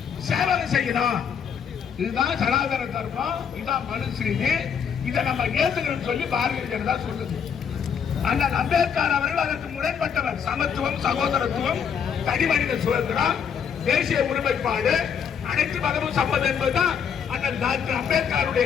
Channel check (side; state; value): right; quieter; 7.3 dB